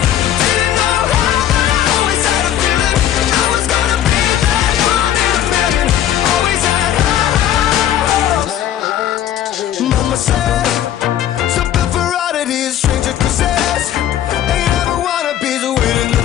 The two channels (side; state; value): right; quieter; 11.2 dB